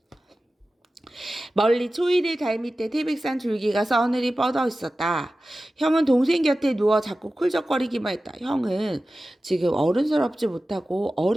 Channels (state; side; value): normal; both; correlation 0.95